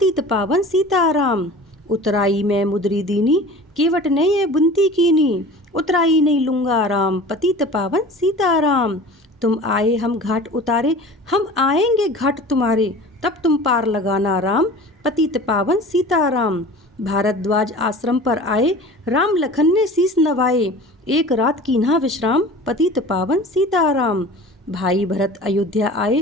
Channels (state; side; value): normal; both; correlation 0.40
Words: पावन सीताराम। उतराई में मुद्री दीनी, केवट ने ये बुनती कीनी। उतराई नहीं लूंगा राम, पतित पावन सीताराम। तुम आए हम घाट उतारे, हम आएंगे घाट तुम्हारे। तब तुम पार लगाना राम, पतित पावन सीताराम। भारद्वाज आश्रम पर आए, राम लखन ने शीस नवाए। एक रात कीन्हा विश्राम, पतित पावन सीताराम। भाई भरत अयोध्या